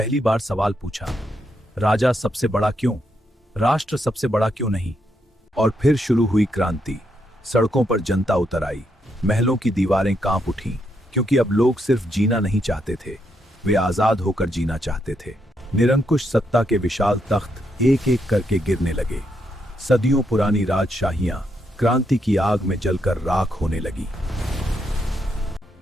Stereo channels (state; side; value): normal; both; correlation 0.79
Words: बार सवाल पूछा, राजा सबसे बड़ा क्यों, राष्ट्र सबसे बड़ा क्यों नहीं? और फिर शुरू हुई क्रांति। सड़कों पर जनता उतर आई, महलों की दीवारें कांप उठीं, क्योंकि अब लोग सिर्फ जीना नहीं चाहते थे, वे आजाद होकर जीना चाहते थे। निरंकुश सत्ता के विशाल तख्त एक एक करके गिरने लगे। सदियों पुरानी राजशाहियां क्रांति की आग में जलकर राख होने लगी।